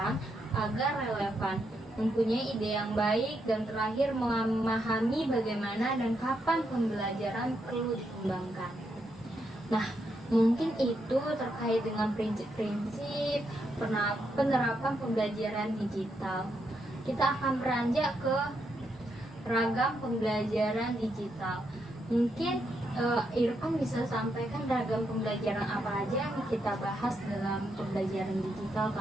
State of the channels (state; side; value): normal; both; correlation 0.80